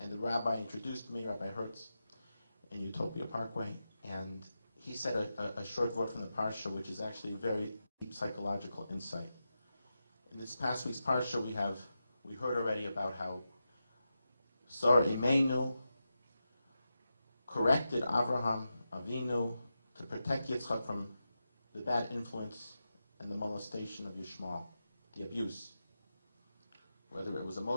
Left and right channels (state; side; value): inverted; both; correlation -0.89